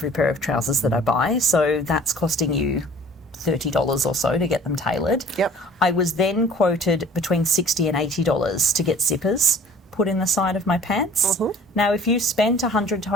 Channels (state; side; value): normal; both; correlation 0.50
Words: pair of trousers that I buy, so that's costing you $30 or so to get them tailored. I was then quoted between $60 and $80 to get zippers put in the side of my pants. Now, if you spend $100 to